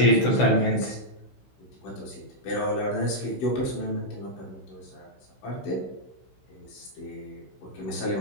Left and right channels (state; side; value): late; right; 16 ms